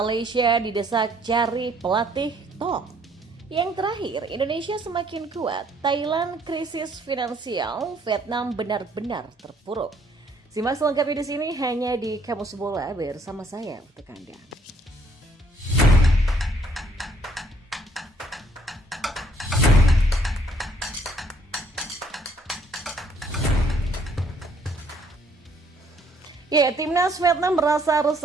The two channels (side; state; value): both; normal; correlation 0.65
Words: didesak cari pelatih top. Yang terakhir, Indonesia semakin kuat, Thailand krisis finansial, Vietnam benar-benar terpuruk. Simak selengkapnya di sini hanya di Kamus Bola bersama saya untuk Anda. Ya, timnas Vietnam merasa